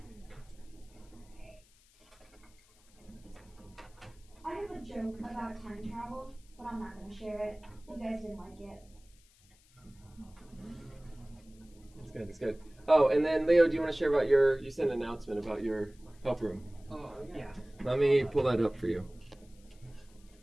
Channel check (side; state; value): left; noise; hiss, 29 dB below the sound